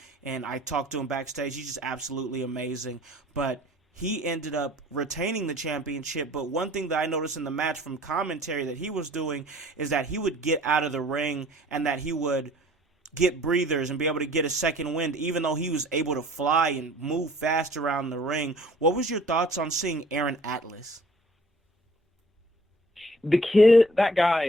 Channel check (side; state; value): both; normal; correlation 0.53